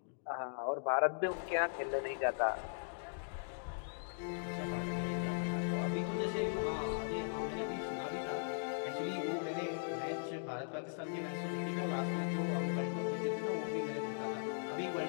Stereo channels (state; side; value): silent; right; digital silence